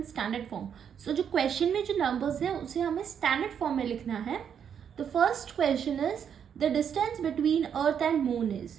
standard form. So जो क्वेश्चन में जो नंबर्स हैं उसे हमें स्टैंडर्ड फॉर्म में लिखना है। The first question is the distance between Earth and moon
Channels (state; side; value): quieter; left; 8.0 dB